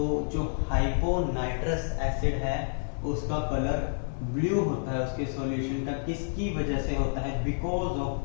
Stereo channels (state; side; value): silent; right; digital silence